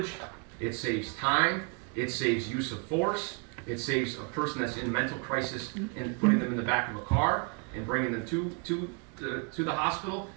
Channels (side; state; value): left; quieter; 35.5 dB